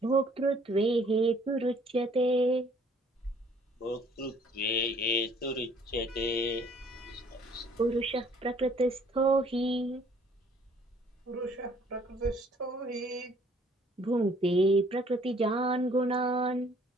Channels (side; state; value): both; normal; correlation 0.59